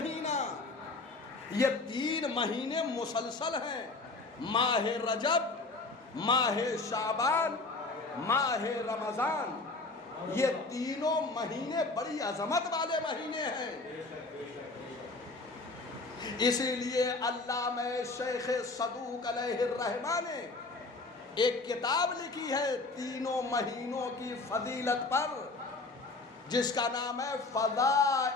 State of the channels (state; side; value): quieter; right; 3.5 dB